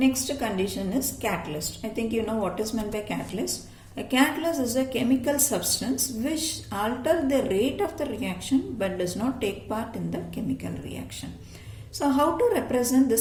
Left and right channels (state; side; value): identical; both; correlation 1.00